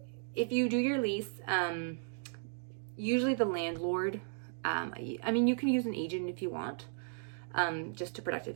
If you do your lease, usually the landlord, I mean, you can use an agent if you want, just to protect it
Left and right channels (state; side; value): silent; left; digital silence